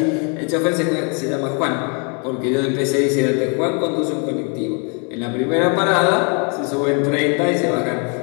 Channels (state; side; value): quieter; right; 36.8 dB